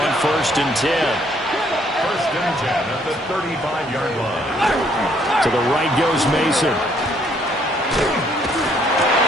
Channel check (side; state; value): both; normal; correlation 0.66